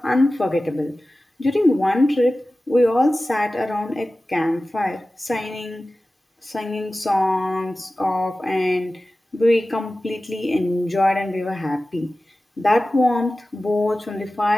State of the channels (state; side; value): normal; both; correlation 0.96